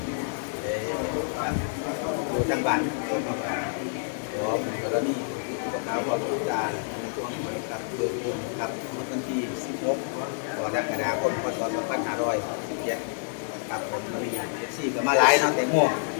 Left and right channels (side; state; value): right; silent; digital silence